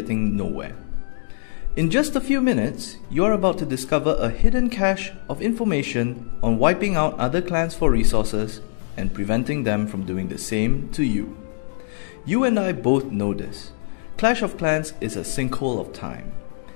nowhere? In just a few minutes, you're about to discover a hidden cache of information on wiping out other clans for resources and preventing them from doing the same to you. You and I both know this. Clash of Clans is a sinkhole of time.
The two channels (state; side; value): silent; right; digital silence